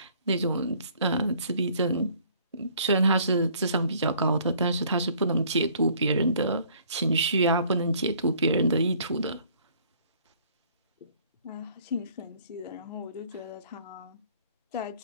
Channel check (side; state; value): both; inverted; correlation -0.59